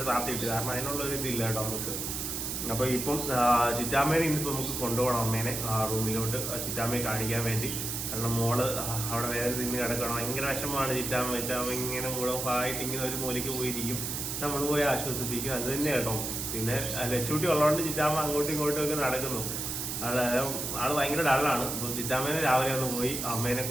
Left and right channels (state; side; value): noise; right; hiss, 3 dB below the sound